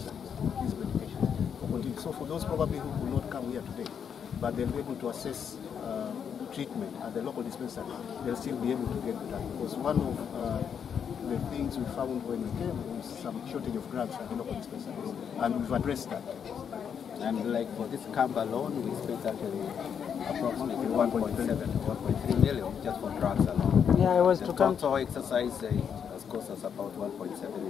these medications. So for those probably who will not come here today, but they'll be able to assess treatment at the local dispensary, they'll still be able to get the drug. Because one of the things we found when we came was some shortage of drugs at the local dispensaries, and we've addressed that. And like for this camp alone, we spent actually approximately 1.3 million just for drugs alone. Yeah, I was the to come. total exercise has cost us about 1.7,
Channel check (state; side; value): quieter; right; 7.6 dB